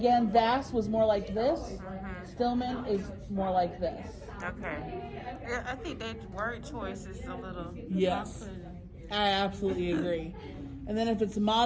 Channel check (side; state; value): both; identical; correlation 1.00